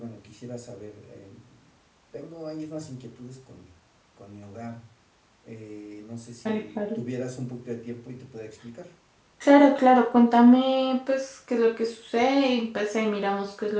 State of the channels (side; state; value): both; identical; correlation 1.00